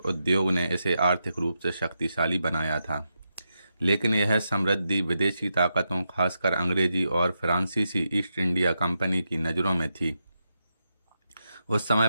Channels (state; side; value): inverted; both; correlation -0.86